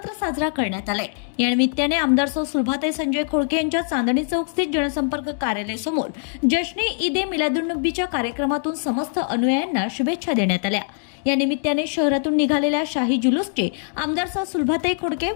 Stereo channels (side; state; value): right; silent; 64 dB below the other